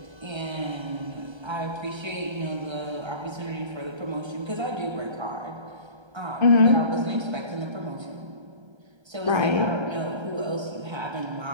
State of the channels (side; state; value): left; late; 1.3 ms